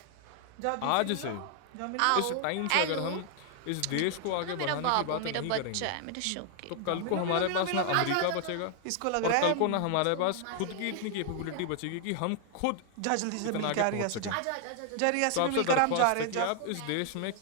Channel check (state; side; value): different; both; correlation 0.00